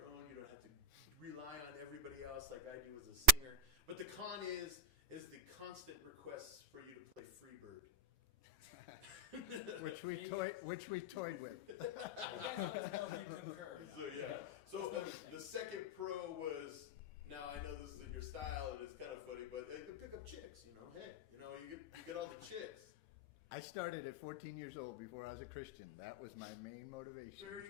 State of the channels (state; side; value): late; left; 5.4 ms